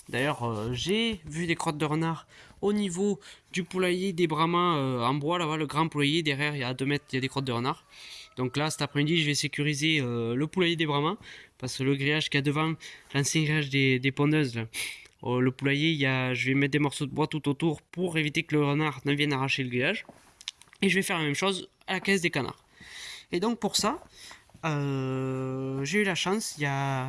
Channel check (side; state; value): both; identical; correlation 1.00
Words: D'ailleurs, j'ai vu des crottes de renard au niveau du poulailler des Brahmas en bois, là-bas, le grand poulailler. Derrière, il y a 2 mètres, il y a des crottes de renard. Donc là, cet après-midi, je vais sécuriser le poulailler des Brahmas. Parce que le grillage qu'il y a devant, l'ancien grillage des pondeuses, là, le poulailler, je vais mettre des morceaux de bois tout autour pour éviter que le renard ne vienne arracher le grillage. Et je vais faire la même chose à la caisse des canards. Et donc pour ça, j'ai eu la chance, il y a